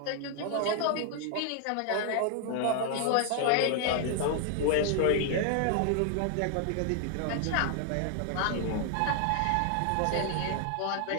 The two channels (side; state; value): both; different; correlation 0.00